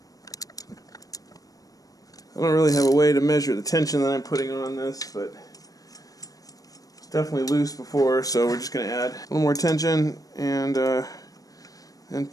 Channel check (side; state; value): right; late; 0.17 ms